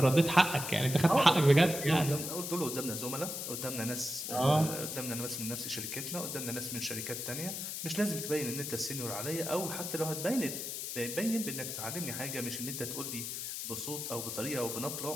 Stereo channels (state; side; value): noise; left; hiss, 5 dB below the sound